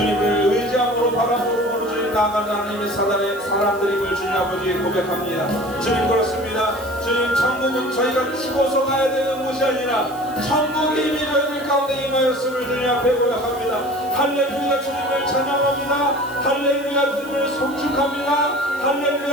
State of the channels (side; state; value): right; noise; hiss, 20 dB below the sound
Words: 의지함으로 바람으로 보는 주님 나가는 하나님의 사람들임을 주님 아버지 고백합니다. 주님 그렇습니다. 주님 천국은 저희가 죽어서 가야 되는 곳이 아니라 천국이 이미 저희들 가운데 임하였음을 주님 앞에 고백합니다. 할렐루야 주님을 찬양합니다. 할렐루야 주님을 송축합니다.